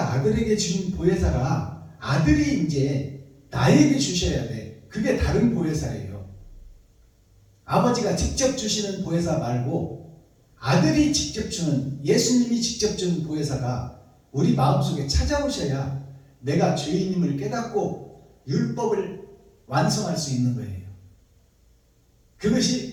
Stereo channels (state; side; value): identical; both; correlation 1.00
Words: 아들에게 주신 보혜사가 아들이 이제 나에게 주셔야 돼. 그게 다른 보혜사예요. 아버지가 직접 주시는 보혜사 말고 아들이 직접 주는, 예수님이 직접 주는 보혜사가 우리 마음속에 찾아오셔야 내가 죄인임을 깨닫고 율법을 완성할 수 있는 거예요.